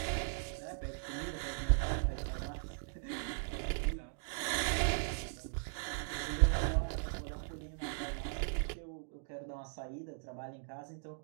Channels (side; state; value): left; silent; digital silence